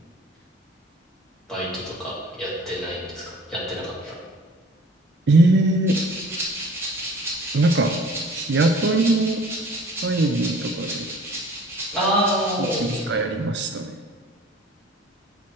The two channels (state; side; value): normal; both; correlation 0.49